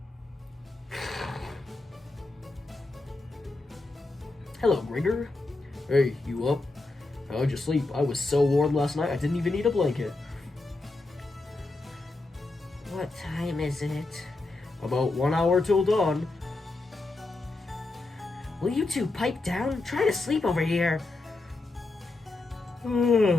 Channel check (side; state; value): right; quieter; 3.2 dB